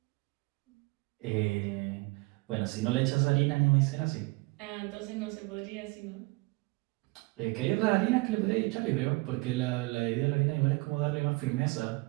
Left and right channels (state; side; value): quieter; left; 25.6 dB